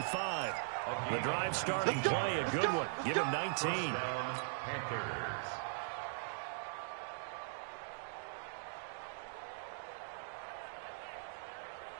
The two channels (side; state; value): left; silent; digital silence